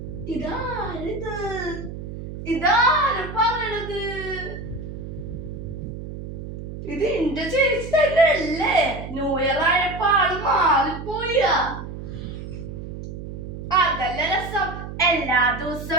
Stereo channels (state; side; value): noise; right; hum, 9 dB below the sound